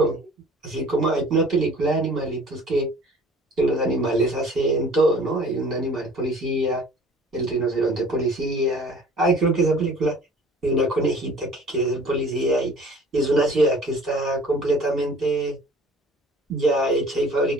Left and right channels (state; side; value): normal; both; correlation 0.49